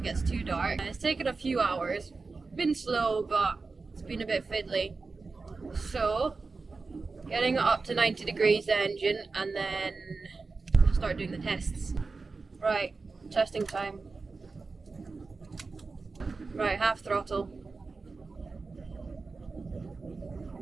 gets too dark. It's taken a few hours, been slow, but it's been a bit fiddly. So, getting it up to 90 degrees the engine, and then start doing the tests. Right, testing time. Right, half throttle.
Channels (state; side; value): quieter; left; 4.1 dB